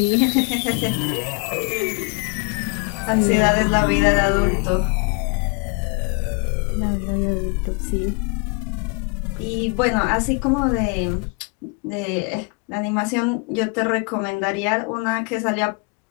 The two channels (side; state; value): right; quieter; 31.4 dB